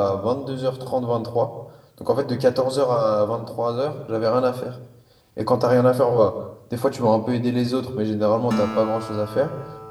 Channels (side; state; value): both; identical; correlation 1.00